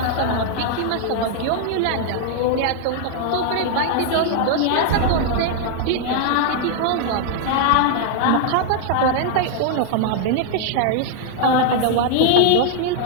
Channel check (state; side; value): different; both; correlation 0.00